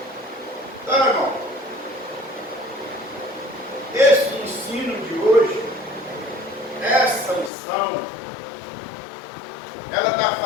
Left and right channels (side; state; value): right; drops out; at 7.5 s